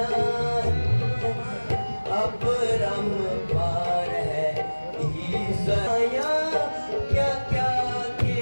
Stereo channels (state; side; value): inverted; both; correlation -1.00